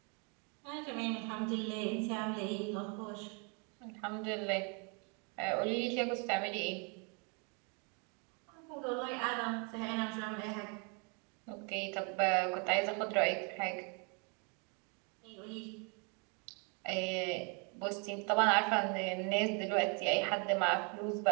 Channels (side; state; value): left; quieter; 35.3 dB